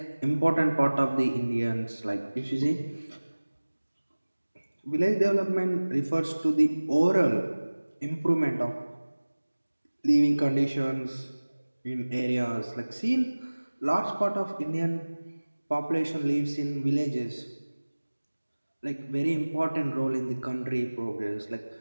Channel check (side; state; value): both; inverted; correlation -1.00